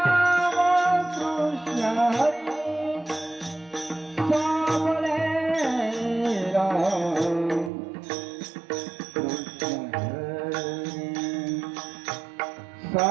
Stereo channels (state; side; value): drops out; left; at 7.7 s